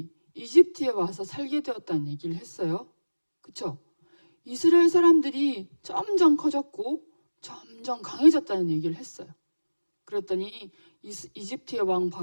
이집트에 와서 살게 되었다는 얘기를 했어요. 그쵸? 이스라엘 사람들이 점점 커졌고 점점 강해졌다는 얘기를 했어요. 그랬더니 이집트의 왕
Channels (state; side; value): inverted; both; correlation -1.00